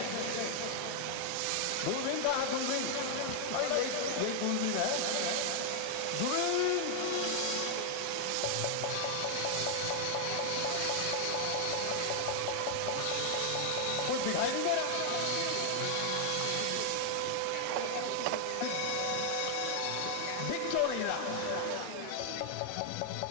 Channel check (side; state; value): both; different; correlation 0.00